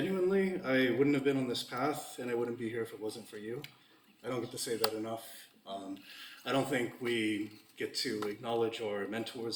I wouldn't have been on this path and I wouldn't be here if it wasn't for you. I don't get to say that enough. I don't think we get to acknowledge our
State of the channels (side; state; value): both; identical; correlation 1.00